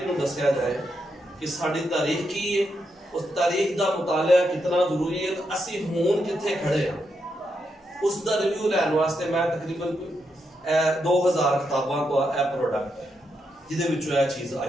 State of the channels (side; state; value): both; normal; correlation 0.82